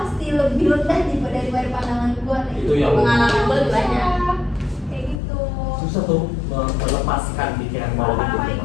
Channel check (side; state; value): right; drops out; at 5.2 s